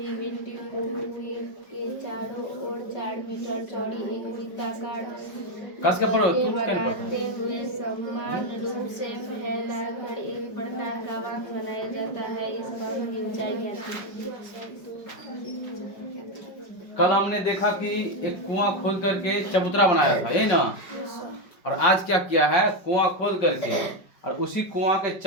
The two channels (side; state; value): right; late; 5.1 ms